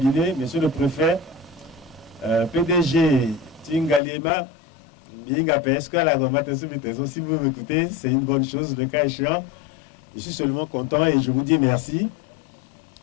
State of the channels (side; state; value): right; drops out; at 4.0 s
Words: monsieur le préfet, PDG Ngaliema, est-ce que la normatisation du trésor, si vous m'écoutez, c'est une bonne chose, le cas échéant. Je suis seulement content et je vous dis merci.